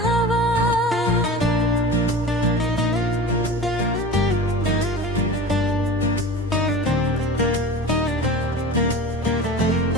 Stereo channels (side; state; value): both; normal; correlation 0.35